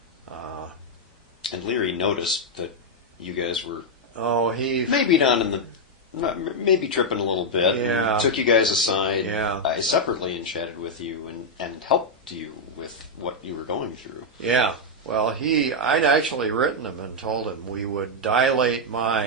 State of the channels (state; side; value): normal; both; correlation -0.02